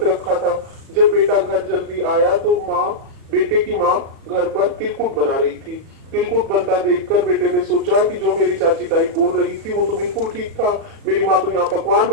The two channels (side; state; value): left; late; 37 ms